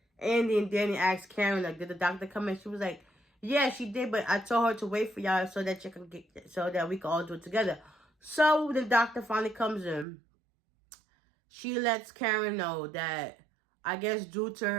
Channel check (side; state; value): left; drops out; at 10.1 s